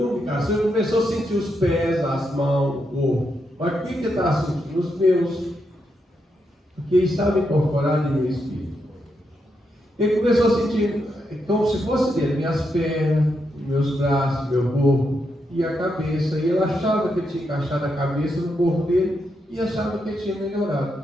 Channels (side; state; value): both; normal; correlation 0.82